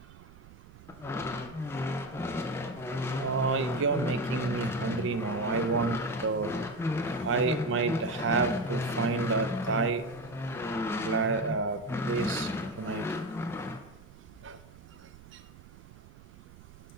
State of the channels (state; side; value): noise; right; rumble, 20 dB below the sound